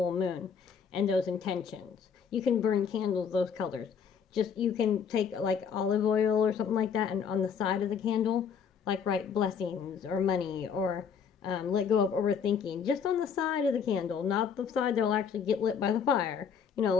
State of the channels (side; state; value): right; quieter; 6.9 dB